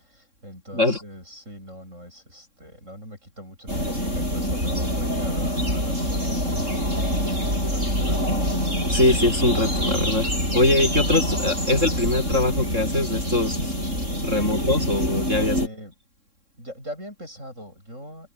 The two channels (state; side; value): late; left; 3.6 ms